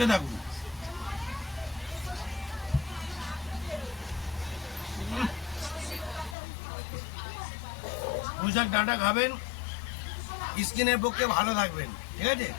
থাকুন। পুঁইশাক ডাঁটা খাবেন, স্কিনের পক্ষে ভালো থাকবেন, ঠিক আছে?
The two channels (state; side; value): drops out; right; at 6.4 s